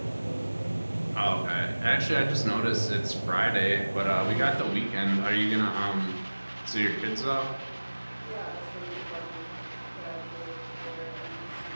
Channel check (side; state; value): both; inverted; correlation -1.00